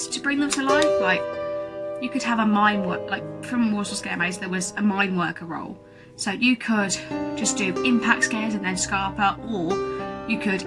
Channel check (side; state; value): both; identical; correlation 1.00